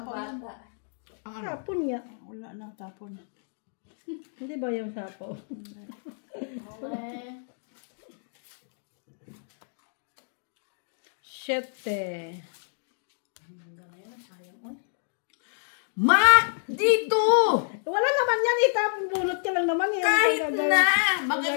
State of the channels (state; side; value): silent; right; digital silence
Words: yan. Tapon nga. Wala na, tapon. Hindi ba yung sapaw? Okay. Siyete. Mac! Dito! Wala naman yan, itapon bunot ka lang naman. Yan, Kahit Gagawin- na! Magagalit na